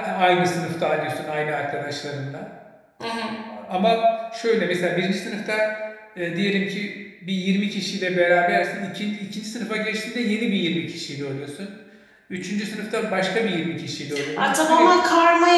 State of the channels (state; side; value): identical; both; correlation 1.00